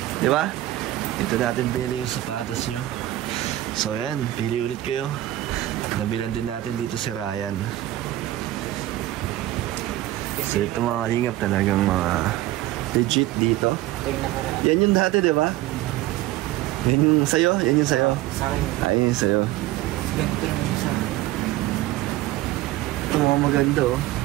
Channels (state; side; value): quieter; left; 15.6 dB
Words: Di ba? Dito natin bili yung sapatos nyo. So yan, pili ulit kayo. Nabilan din natin dito si Ryan. So ito mga kalingap, talagang mga legit dito. Yan yung dati, di ba? Yan yung sayo? Yan yung sayo? Sa akin. Yan yung sayo. Ganito lang yung sa akin. maganda oh.